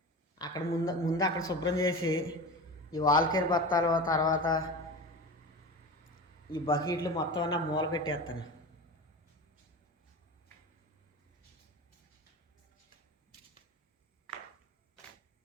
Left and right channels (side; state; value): both; normal; correlation 0.30